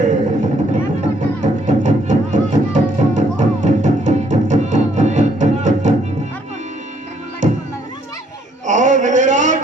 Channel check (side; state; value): both; normal; correlation 0.67